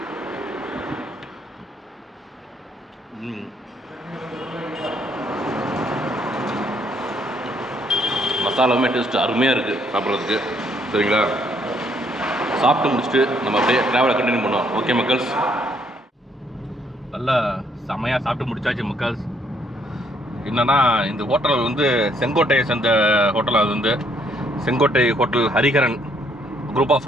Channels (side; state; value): both; normal; correlation 0.68